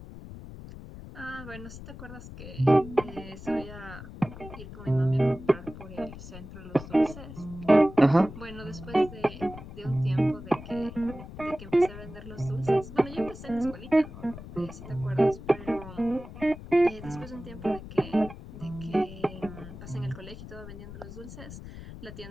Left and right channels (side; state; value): left; noise; rumble, 13 dB below the sound